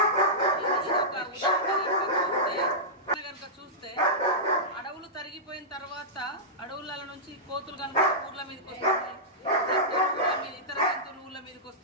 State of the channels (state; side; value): normal; both; correlation -0.14